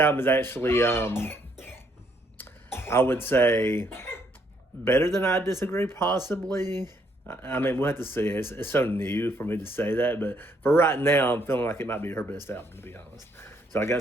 is actually, I would say, better than I Disagree, possibly. I mean, we'll have to see. It's so new for me to say that, but for right now, I'm feeling like it might be her best album, to be honest. So I got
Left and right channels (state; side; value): normal; both; correlation 0.70